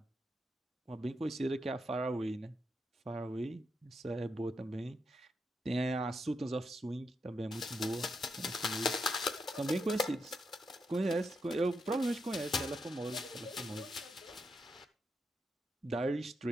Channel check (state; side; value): normal; both; correlation 0.83